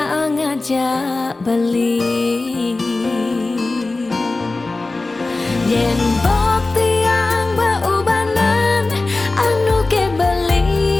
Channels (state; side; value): quieter; right; 3.3 dB